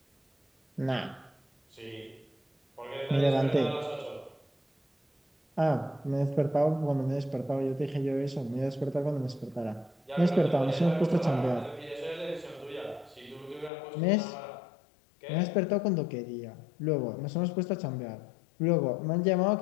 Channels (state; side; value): drops out; right; at 13.7 s